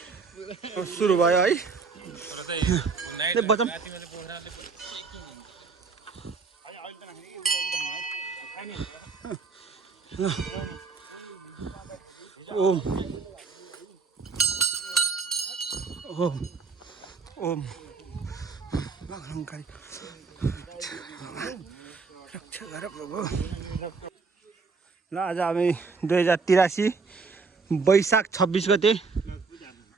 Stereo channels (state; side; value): quieter; left; 4.7 dB